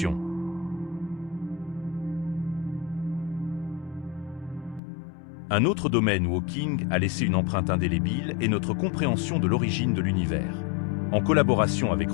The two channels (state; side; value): drops out; right; at 4.8 s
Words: Un autre domaine où Hawking a laissé une empreinte indélébile est notre compréhension de l'origine de l'univers. En collaboration avec